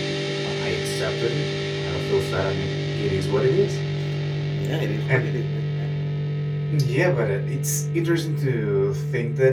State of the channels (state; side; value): identical; both; correlation 1.00